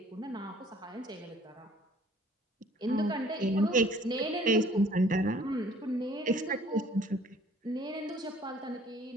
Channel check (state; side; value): normal; both; correlation 0.57